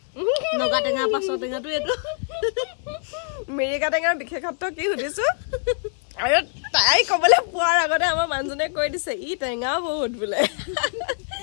নগা টেঙা পাছৰ টেঙাটো এইটো মিৰিকা টেঙাৰ বিশেষত্ব কি সুধিছো আৰু তাই কবলৈ পোৱাৰ আগতে আমাৰ মানুহজনে কৈ দিছে ই টেঙা বহুত বোলে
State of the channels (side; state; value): right; silent; digital silence